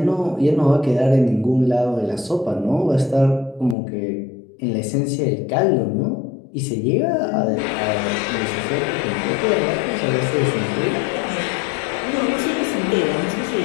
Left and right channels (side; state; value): right; drops out; at 3.8 s